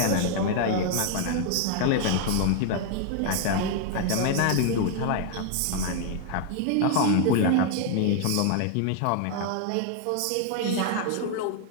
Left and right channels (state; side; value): different; both; correlation 0.00